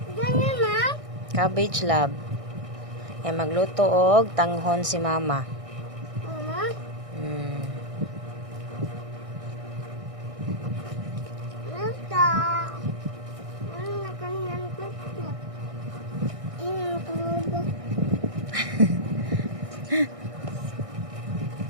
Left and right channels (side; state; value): left; late; 1.6 ms